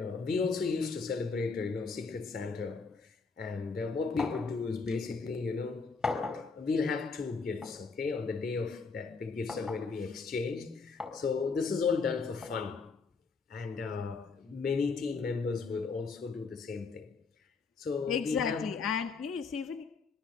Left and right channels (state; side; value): quieter; right; 4.7 dB